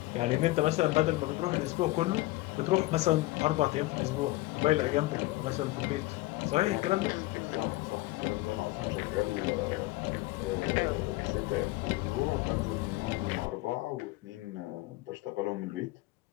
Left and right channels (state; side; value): quieter; right; 19.5 dB